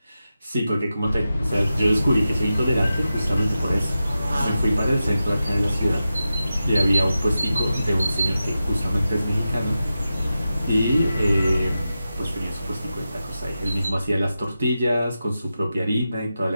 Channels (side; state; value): both; inverted; correlation -0.91